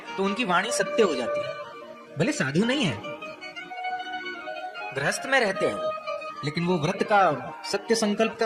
तो उनकी वाणी सत्य हो जाती है। भले साधु नहीं है, गृहस्थ में रहते हैं, लेकिन वो व्रत का, सत्य संकल्प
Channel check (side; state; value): both; identical; correlation 1.00